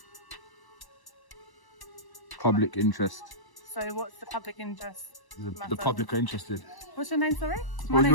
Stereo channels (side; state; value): right; late; 1.1 ms